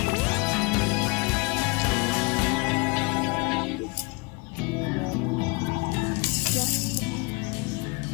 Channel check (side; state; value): right; quieter; 28.0 dB